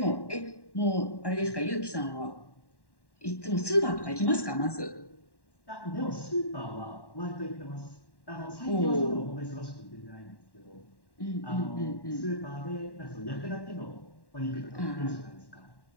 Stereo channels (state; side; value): late; right; 1.1 ms